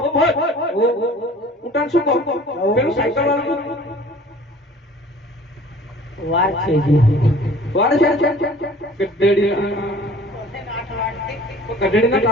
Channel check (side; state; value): both; normal; correlation 0.48